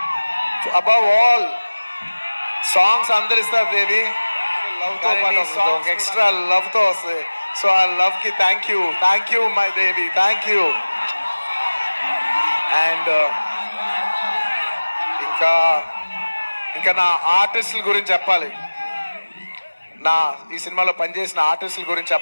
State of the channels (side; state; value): both; inverted; correlation -1.00